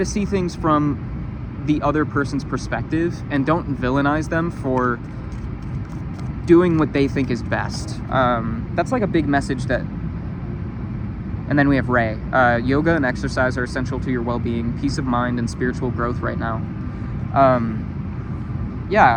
see things from the other person's perspective, and don't villainize them for doing what they think is best. That's like a big message that... And then we have Ray. Yoga and exercise are essential to your well-being, peace of mind, and spiritual growth right now.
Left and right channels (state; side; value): identical; both; correlation 1.00